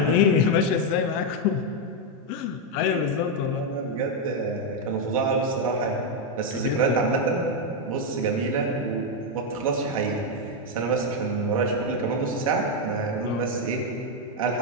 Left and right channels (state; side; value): normal; both; correlation 0.02